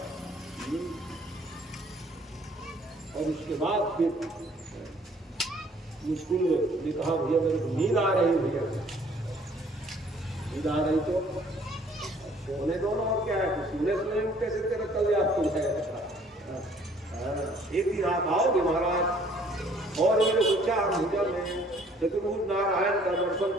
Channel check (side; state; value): both; normal; correlation 0.59